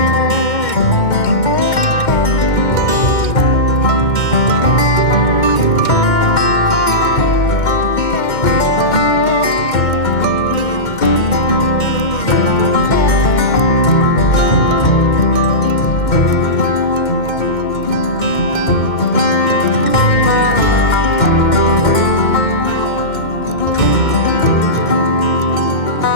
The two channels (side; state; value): right; late; 2.1 ms